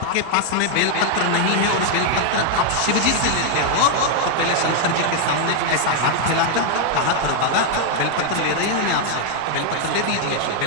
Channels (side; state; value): both; different; correlation 0.00